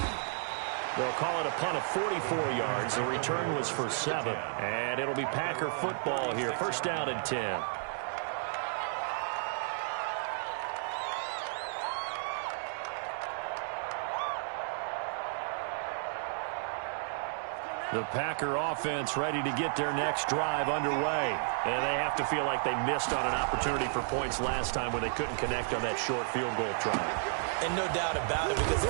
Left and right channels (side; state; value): left; silent; digital silence